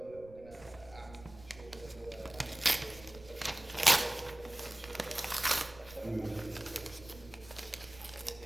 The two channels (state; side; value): noise; right; rumble, 19 dB below the sound